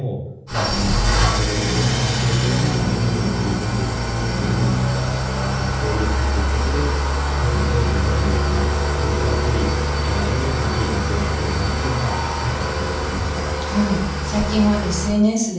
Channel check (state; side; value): identical; both; correlation 1.00